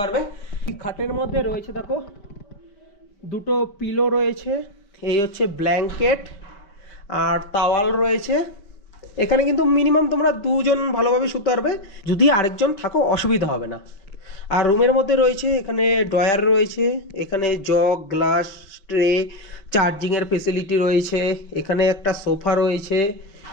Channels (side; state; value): right; late; 5.1 ms